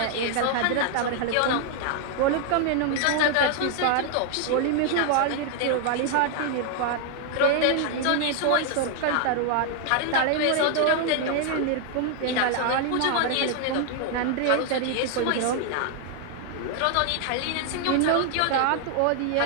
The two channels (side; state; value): both; different; correlation 0.00